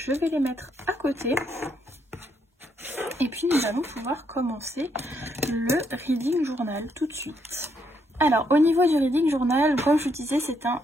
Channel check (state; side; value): normal; both; correlation 0.75